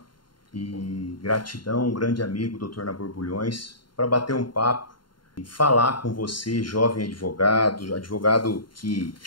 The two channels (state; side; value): late; right; 0.72 ms